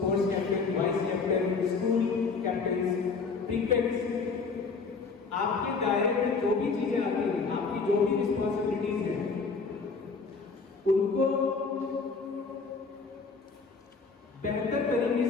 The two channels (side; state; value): right; quieter; 4.7 dB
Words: captain, vice captain, school captain, prefects, आपके दायरे में जो भी चीजें आती हैं, आपकी जो भी रिस्पॉन्सिबिलिटीज हैं, उनको बेहतर तरीके